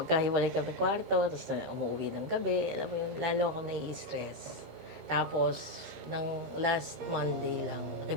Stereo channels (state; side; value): late; left; 15 ms